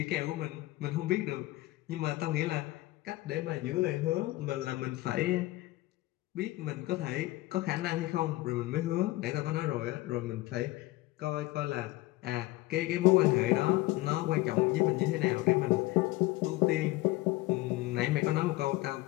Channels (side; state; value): right; quieter; 18.9 dB